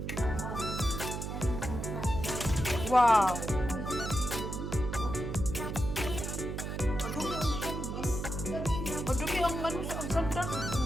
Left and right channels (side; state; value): right; noise; hum, 4 dB below the sound